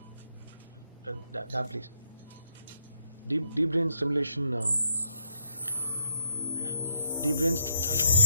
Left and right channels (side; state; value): both; inverted; correlation -0.75